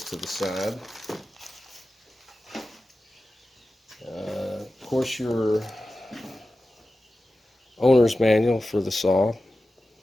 to the side. Of course, your owner's manual for the saw.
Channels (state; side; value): normal; both; correlation 0.94